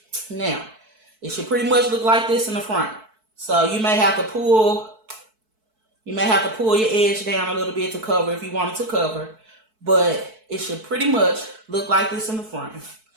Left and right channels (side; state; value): left; late; 4.6 ms